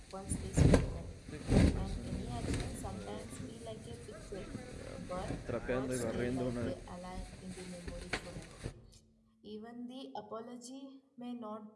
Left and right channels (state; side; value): identical; both; correlation 1.00